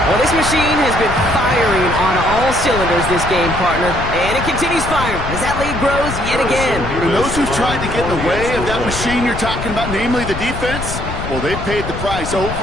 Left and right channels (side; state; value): left; noise; rumble, 7 dB below the sound